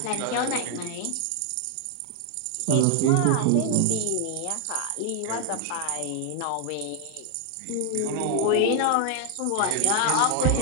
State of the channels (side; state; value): both; different; correlation 0.00